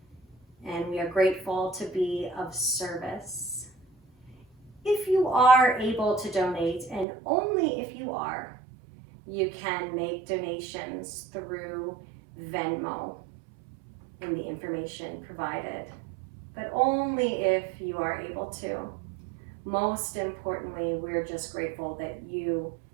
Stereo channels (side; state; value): left; drops out; at 7.1 s